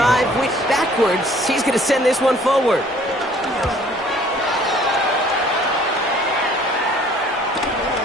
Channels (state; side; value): normal; both; correlation 0.56